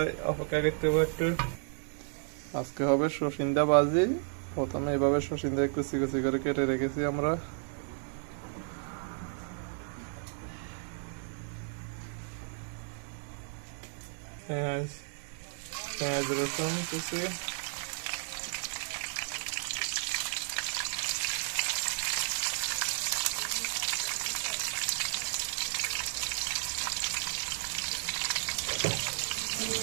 অপেক্ষা করতে হবে একটু। আজকে হবে সসিন্দা ভাজি। প্রথমে এভাবে সসিন্দা কুচি কুচি করে কেটে রেখেছি আমরা। পেঁয়াজ পেঁয়াজ রসুন কুচি,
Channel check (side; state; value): left; silent; 56 dB below the other